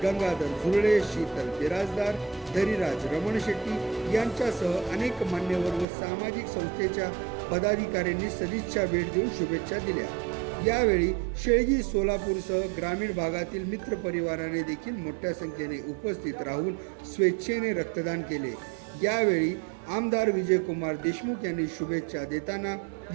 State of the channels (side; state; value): left; drops out; at 5.9 s